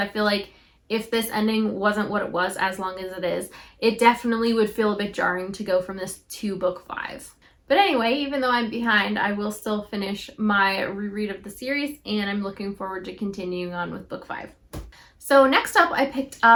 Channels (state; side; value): identical; both; correlation 1.00